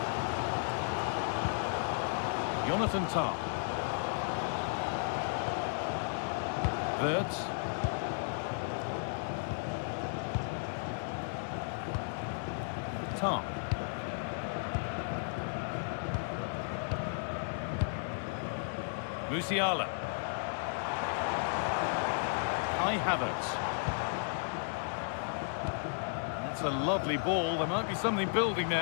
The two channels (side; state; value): right; silent; digital silence